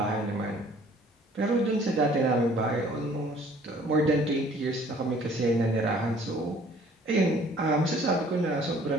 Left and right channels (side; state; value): both; normal; correlation 0.55